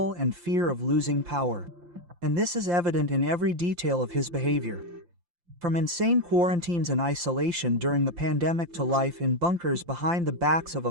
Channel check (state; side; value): late; left; 5.8 ms